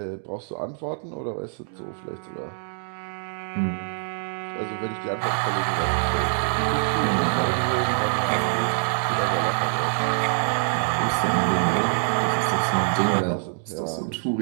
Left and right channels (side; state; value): left; silent; 62 dB below the other